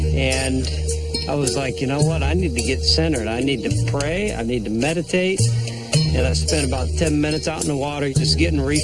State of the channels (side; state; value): both; identical; correlation 1.00